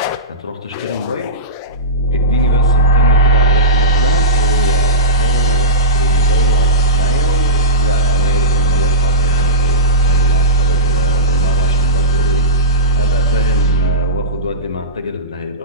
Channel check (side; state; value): both; normal; correlation -0.18